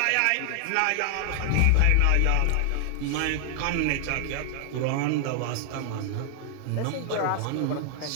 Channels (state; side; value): different; both; correlation 0.00